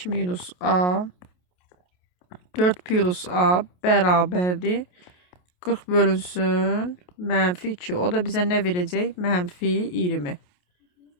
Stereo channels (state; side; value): late; right; 28 ms